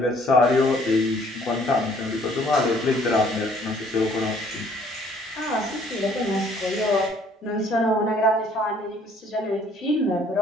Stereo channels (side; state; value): both; normal; correlation 0.60